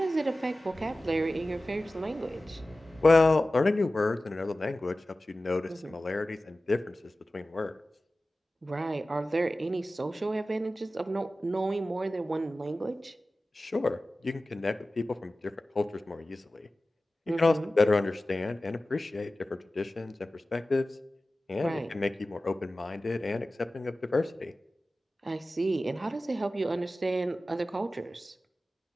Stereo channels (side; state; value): both; normal; correlation 0.95